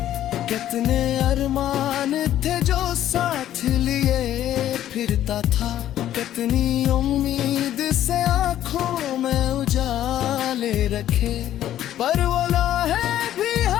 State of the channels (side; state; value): right; quieter; 12.1 dB